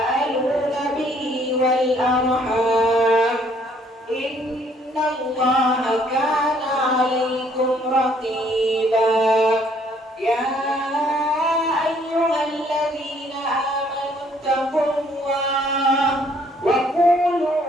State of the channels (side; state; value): both; normal; correlation 0.64